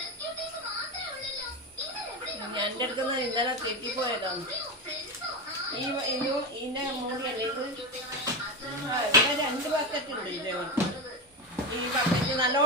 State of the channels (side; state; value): both; normal; correlation 0.17